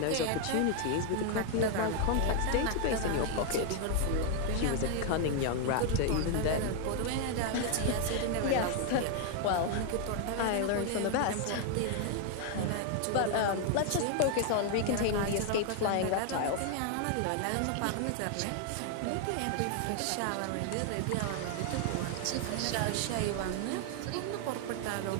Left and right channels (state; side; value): different; both; correlation 0.01